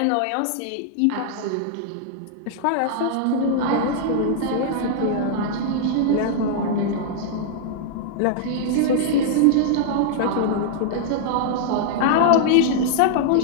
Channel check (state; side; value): different; both; correlation -0.01